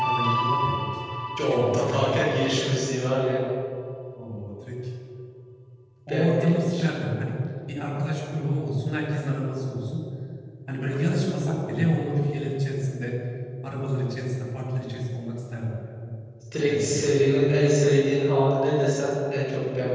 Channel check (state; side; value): identical; both; correlation 1.00